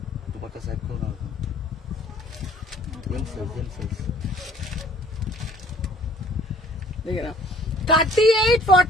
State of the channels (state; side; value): normal; both; correlation 0.55